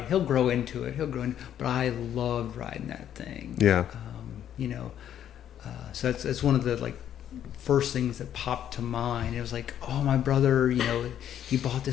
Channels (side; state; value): right; quieter; 10.3 dB